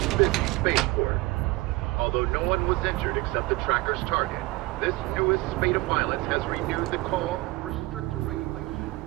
busy spaceport. Although no one was injured except the tracker's target, this newest spate of violence has renewed the call for stricter regulation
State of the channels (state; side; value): quieter; left; 21.1 dB